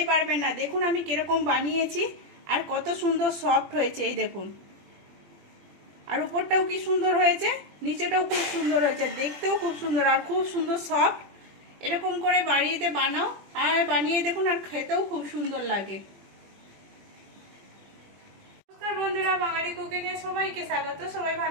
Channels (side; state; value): left; late; 21 ms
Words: পারবেন না। দেখুন আমি কিরকম বানিয়েছি আর কত সুন্দর সফট হয়েছে, এই দেখুন। আর উপরটাও কি সুন্দর হয়েছে, নিচেটাও খুব সুন্দর হয়েছে, দেখতেও খুব সুন্দর আর খুব সুন্দর সফট। এরকম করে বাড়িতে বানাও আর বানিয়ে দেখুন, আর খেতেও খুব সুন্দর লাগে। নমস্কার বন্ধুরা, বাঙালি কুকিং এ সবাইকে স্বাগত। সবাই